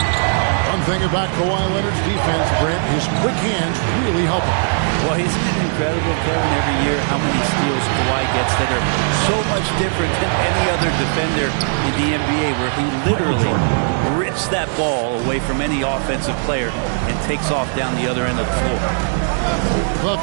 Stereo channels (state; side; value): silent; left; 67 dB below the other